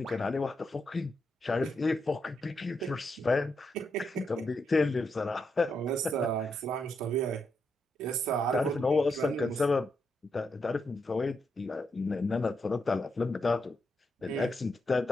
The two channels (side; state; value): both; normal; correlation 0.82